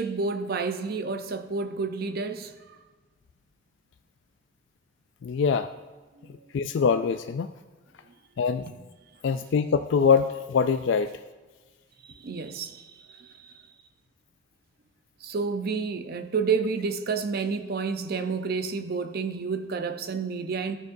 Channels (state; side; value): normal; both; correlation 0.01